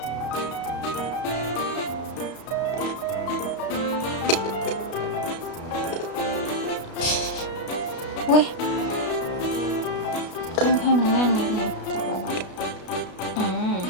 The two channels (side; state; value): right; late; 33 ms